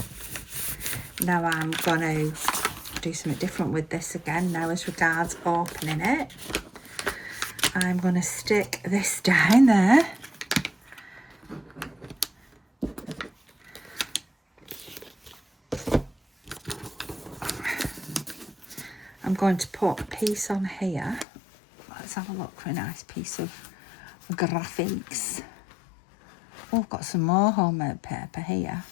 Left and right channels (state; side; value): drops out; right; at 21.2 s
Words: Now I'm going to do something different with this again now as regards opening it. I'm going to stick this down there. I'm going to put a piece on here. Let's have a look for a nice piece of graphics. Oh, I've got some more homemade paper here.